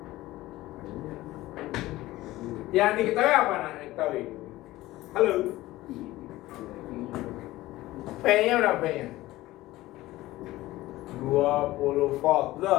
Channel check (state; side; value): quieter; right; 17.3 dB